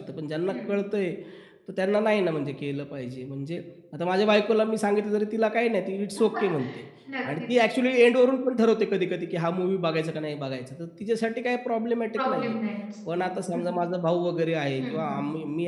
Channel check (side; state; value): both; identical; correlation 1.00